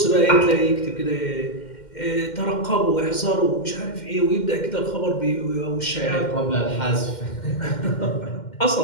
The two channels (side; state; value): right; late; 2.1 ms